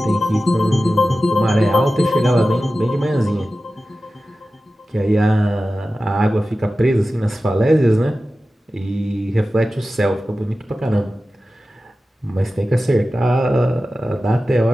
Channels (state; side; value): normal; both; correlation 0.94